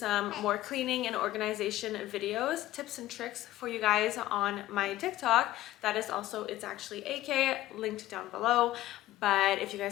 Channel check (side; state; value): right; quieter; 15.4 dB